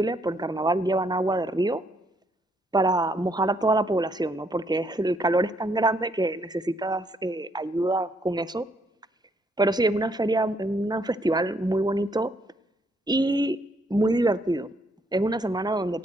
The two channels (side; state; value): both; normal; correlation 0.71